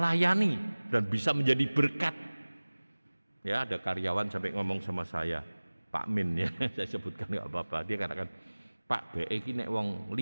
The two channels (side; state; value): both; inverted; correlation -1.00